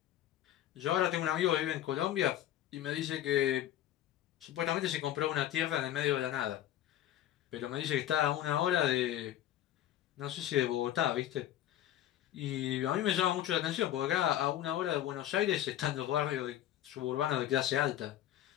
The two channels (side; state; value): right; quieter; 12.4 dB